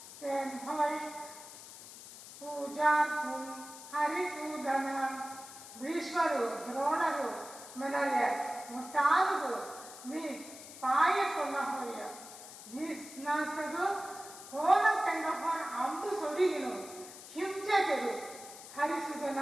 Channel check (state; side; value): noise; left; hiss, 15 dB below the sound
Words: ತೆನ್ ಹೊಯ್ ಪೂಜಾರ್ಪುಂ ಹರಿಸೂದನ ಭೀಷ್ಮರು ದ್ರೋಣರು ಮನಯ ಮುಟ್ಟಾದುದು ನೀ ಪಾಯಕೊನ್ನ ಹೊಯ್ಯ ಭೀಸ್ನಾಸರು ಕೋನ ತಂಗ ಹೊರ ಅಂಬು ಸೊಡಿಗಿನು ಹಿಂಸೆಗೆರು ಹರಿಸುದನ